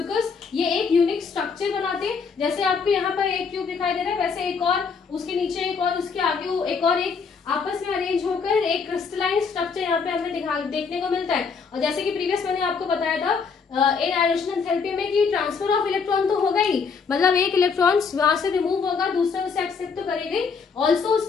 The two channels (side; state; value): right; quieter; 5.5 dB